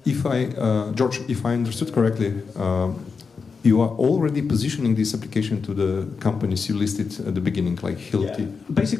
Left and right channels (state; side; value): quieter; right; 5.2 dB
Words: George, if I understood correctly, you are already positioning this application to the companies you listed at the beginning, like Hilti. Yeah.